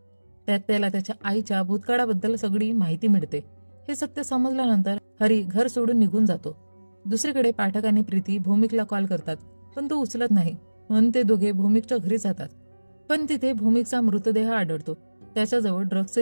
त्यात त्याला त्याच्या आईच्या भूतकाळाबद्दल सगळी माहिती मिळते. हे सत्य समजल्यानंतर हरी घर सोडून निघून जातो. दुसरीकडे पाठक आणि प्रीती भौमिकला कॉल करतात, पण तो उचलत नाही. म्हणून ते दोघे भौमिकच्या घरी जातात. पण तिथे भौमिकचा मृतदेह आढळतो. त्याच्याजवळ ड्रग्जचं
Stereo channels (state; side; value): inverted; both; correlation -1.00